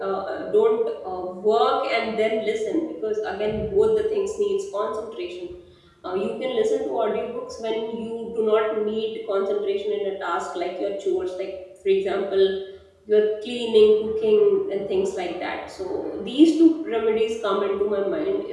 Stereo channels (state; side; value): identical; both; correlation 1.00